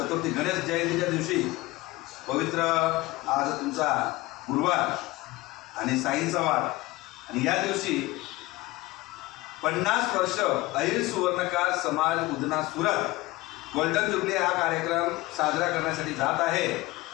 गणेश जयंतीच्या दिवशी पवित्र आज तुमचा गुरुवार आणि साईंचा वार आणि या दिवशी 50 वर्ष अहिर सुवर्णकार समाज उदना सुरत गोल्डन जुबली हा कार्यक्रम साजरा करण्यासाठी जात आहे।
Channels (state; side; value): quieter; right; 20.5 dB